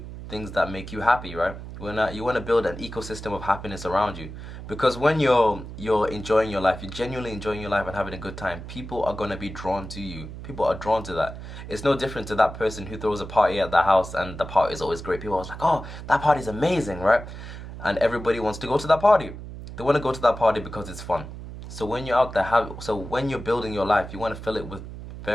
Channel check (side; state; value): right; noise; hum, 11 dB below the sound